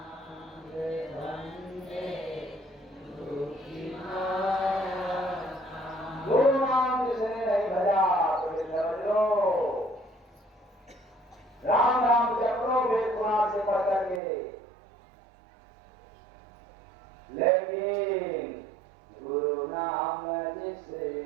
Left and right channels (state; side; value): drops out; left; at 14.2 s